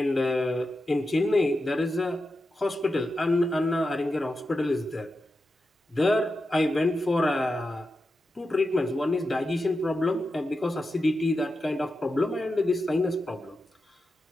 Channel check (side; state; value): both; normal; correlation 0.90